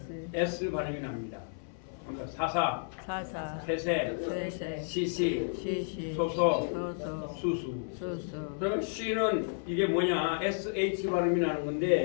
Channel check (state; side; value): silent; right; 56 dB below the other